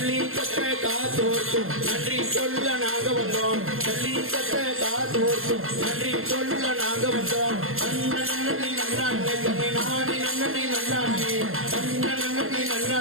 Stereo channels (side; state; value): left; late; 0.61 ms